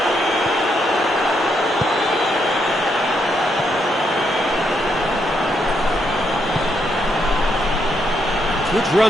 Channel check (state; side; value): normal; both; correlation 0.77